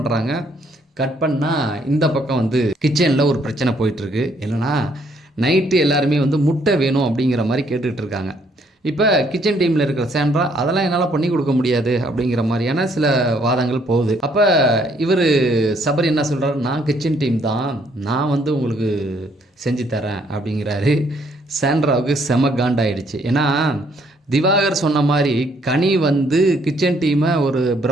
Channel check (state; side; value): normal; both; correlation 0.68